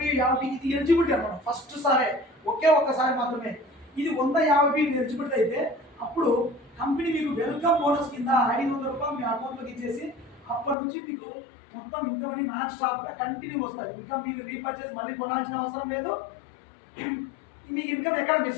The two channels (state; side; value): drops out; right; at 10.8 s